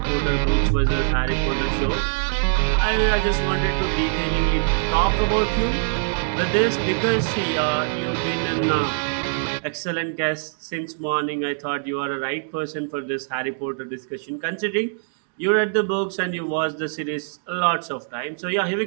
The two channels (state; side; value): silent; left; digital silence